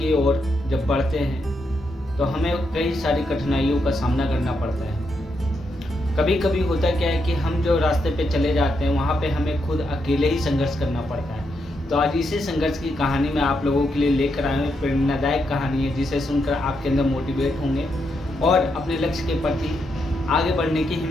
ओर जब बढ़ते हैं तो हमें कई सारी कठिनाइयों का सामना करना पड़ता है। कभी कभी होता क्या है कि हम जो रास्ते पे चले जाते हैं वहाँ पे हमें खुद अकेले ही संघर्ष करना पड़ता है। तो आज इसी संघर्ष की कहानी मैं आप लोगों के लिए लेकर आया हूँ। प्रेरणादायक कहानी है जिसे सुनकर आपके अंदर मोटिवेट होंगे और अपने लक्ष्य के प्रति आगे बढ़ने की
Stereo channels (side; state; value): both; normal; correlation 0.81